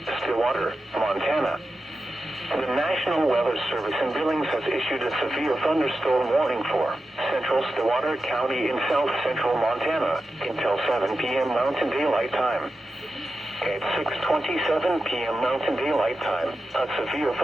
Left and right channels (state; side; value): normal; both; correlation 0.91